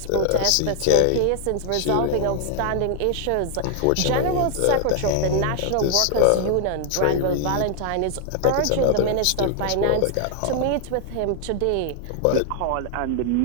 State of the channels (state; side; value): different; both; correlation 0.00